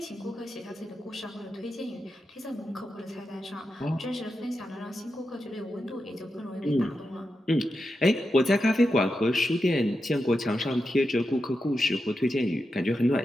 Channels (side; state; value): both; normal; correlation 0.88